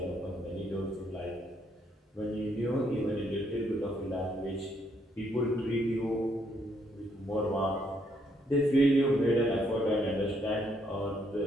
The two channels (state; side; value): normal; both; correlation 0.72